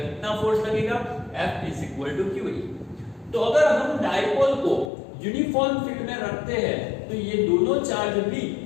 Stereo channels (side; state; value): right; drops out; at 4.9 s